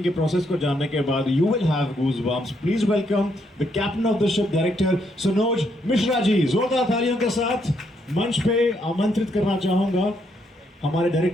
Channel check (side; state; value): both; normal; correlation 0.75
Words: के प्रोसेस को जानने के बाद you will have goosebumps. Please welcome the captain of the ship, director Sanoj Mishra ji. जोरदार तालियों के साथ मंच पे आमंत्रित करना चाहूँगा हमारे